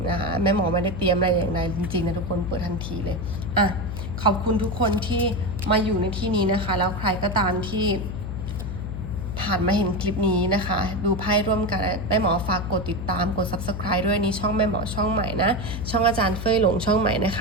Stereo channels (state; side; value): noise; left; hum, 5 dB below the sound